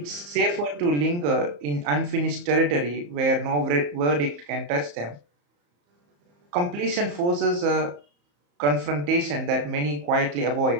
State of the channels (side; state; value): left; late; 34 ms